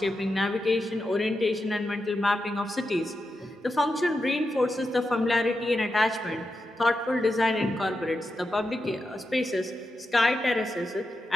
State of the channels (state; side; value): normal; both; correlation 0.88